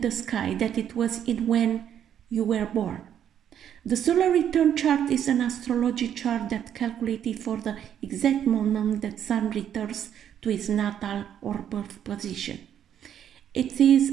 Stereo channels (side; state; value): left; quieter; 9.6 dB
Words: sky that it was in when you were born. The solar return chart is an astrology chart that calculated for the exact moment that sun returns to its natal or birth position. It is